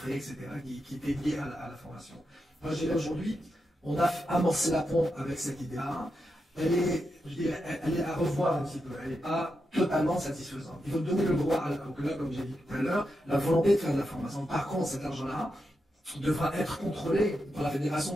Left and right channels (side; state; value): both; normal; correlation 0.86